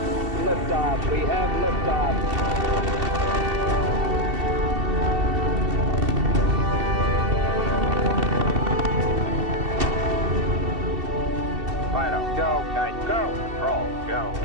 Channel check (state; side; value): late; left; 2.7 ms